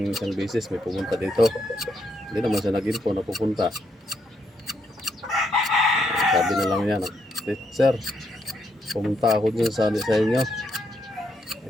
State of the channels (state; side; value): normal; both; correlation 0.77